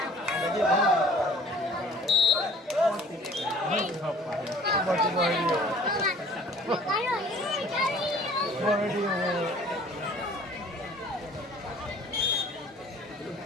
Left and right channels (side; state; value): both; normal; correlation 0.51